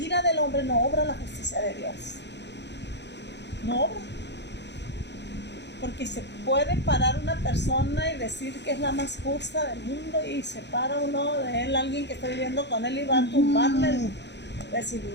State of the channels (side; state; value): right; late; 0.50 ms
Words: del hombre no obra la justicia de Dios. No obra. Porque se puede parar una persona y decir que es la más justa del mundo y se para uno de él, alguien que está viviendo con él y va a tumbarle. Decir,